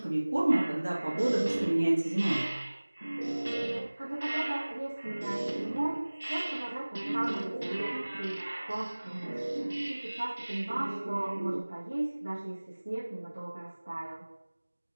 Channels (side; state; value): both; inverted; correlation -1.00